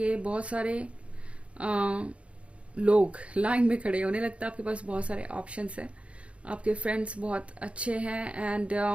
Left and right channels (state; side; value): late; left; 0.061 ms